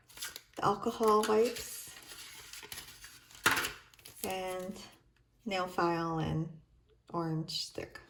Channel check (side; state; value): both; identical; correlation 1.00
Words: the alcohol wipes, and nail file and orange stick.